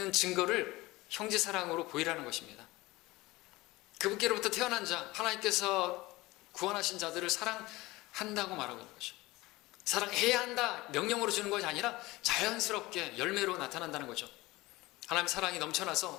증거를 형제 사랑으로 보이라는 것입니다. 그분께로부터 태어난 자, 하나님께서 구원하신 자들을 사랑한다고 말하고 있는 거죠. 사랑해야 한다 명령으로 주는 것이 아니라 자연스럽게 열매로 나타난다는 거죠. 하나님의 사랑이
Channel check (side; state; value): right; quieter; 20.2 dB